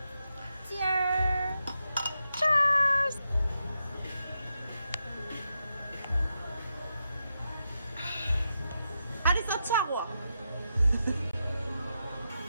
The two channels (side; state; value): both; inverted; correlation -0.86